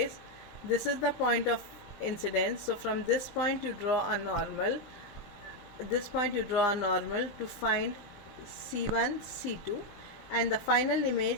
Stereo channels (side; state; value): right; late; 20 ms